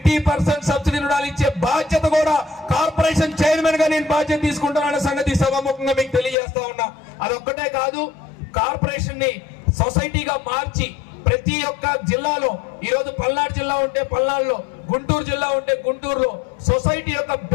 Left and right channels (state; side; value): drops out; right; at 6.4 s